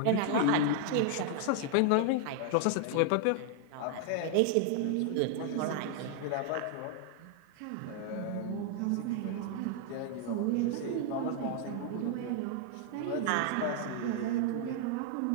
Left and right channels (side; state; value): both; different; correlation 0.00